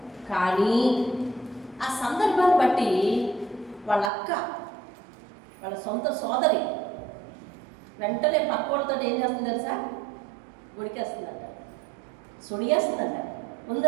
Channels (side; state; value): left; drops out; at 4.1 s